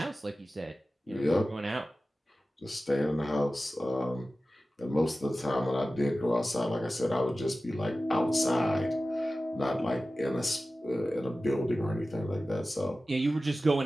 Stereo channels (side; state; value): both; normal; correlation 0.95